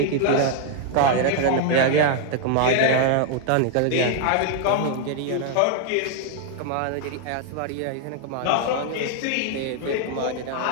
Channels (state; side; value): different; both; correlation 0.00